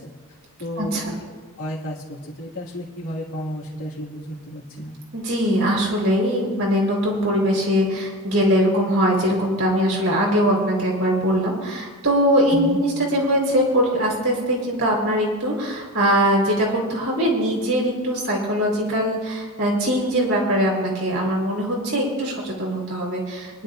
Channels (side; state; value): both; normal; correlation 0.27